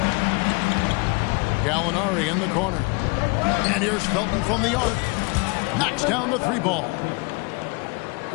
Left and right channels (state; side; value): quieter; right; 29.2 dB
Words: Gallinari in the corner. And here's Felton from the arc. Knocks down the three ball.